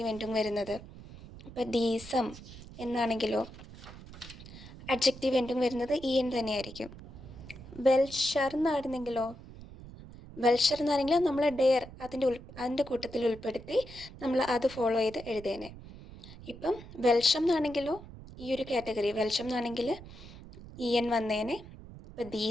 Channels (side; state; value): right; noise; rumble, 16 dB below the sound